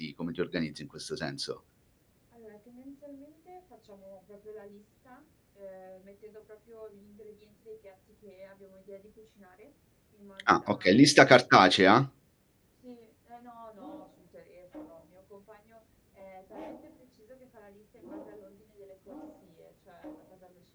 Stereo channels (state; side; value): identical; both; correlation 1.00